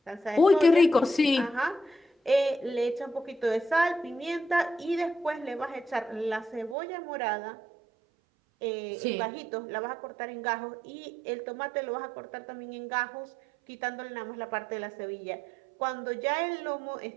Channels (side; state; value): left; drops out; at 6.8 s